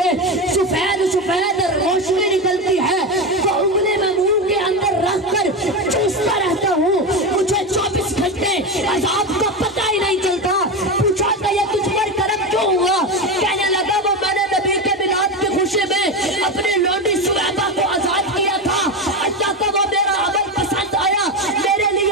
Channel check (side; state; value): both; normal; correlation 0.17